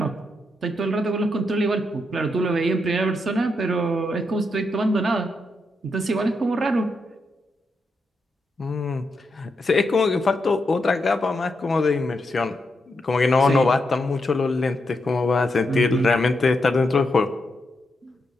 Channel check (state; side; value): normal; both; correlation 0.83